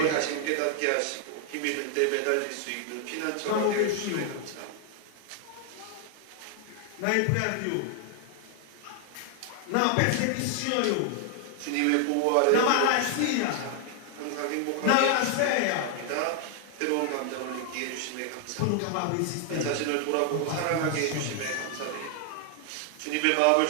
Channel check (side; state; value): both; different; correlation 0.00